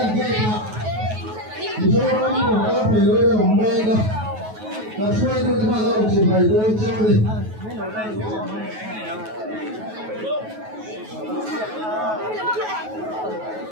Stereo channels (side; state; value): left; late; 9.3 ms